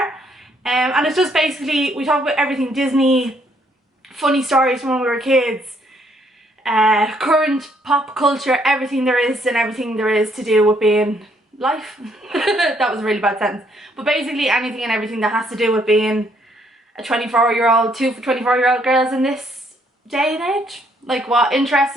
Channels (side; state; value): both; normal; correlation 0.69